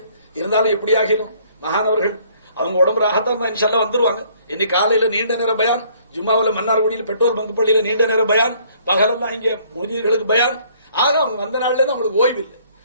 இருந்தாலும் எப்படி ஆகிடும். மகானவர்கள் அவங்க உடம்பு ராகத்தான் தான் இன்ஷால்லா வந்துருவாங்க. இன்னைக்கு காலையில நீண்ட நேர பயான், ஜும்மாவில் மன்னார்குடியில் பெட்ரோல் பங்கு பள்ளியில நீண்ட நேர பயான், பகலெல்லாம் இங்கே முதியர்களுக்கு பயான். ஆக அவங்க வந்த நாள்ல இருந்து அவங்களுக்கு ஓய்வு இல்லை,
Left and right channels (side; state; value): both; inverted; correlation -0.61